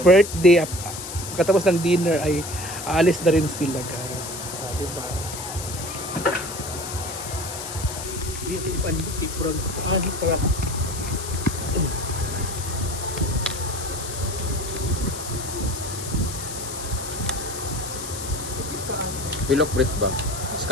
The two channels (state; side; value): noise; left; hiss, 8 dB below the sound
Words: birthday. Pagkatapos ng dinner ay aalis na rin sila, guys. Diba? Pilok Brit ba?